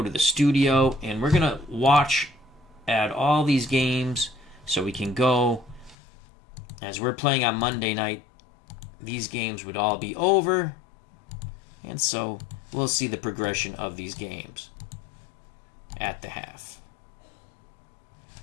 to the studio, and we're going to watch at all these games so we can go. As we're playing on Monday night, these games would all be over, and so we'll see the progression of these games at the half.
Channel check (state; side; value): drops out; right; at 6.0 s